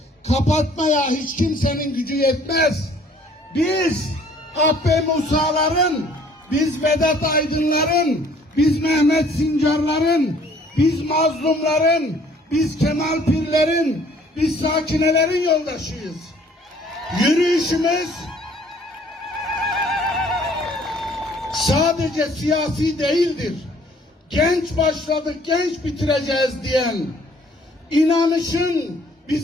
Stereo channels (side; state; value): both; normal; correlation 0.58